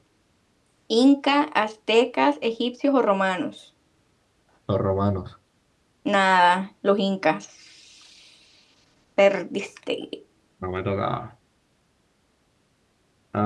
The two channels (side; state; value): both; identical; correlation 1.00